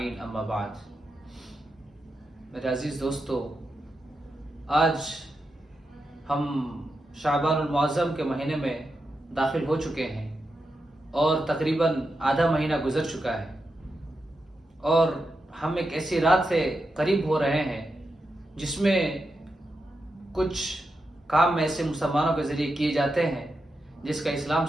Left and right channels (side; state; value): both; normal; correlation 0.87